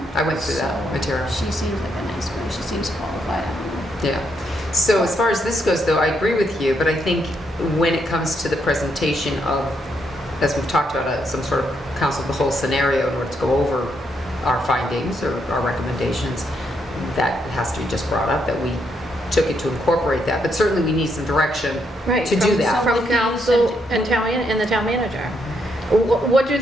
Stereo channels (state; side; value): normal; both; correlation 0.77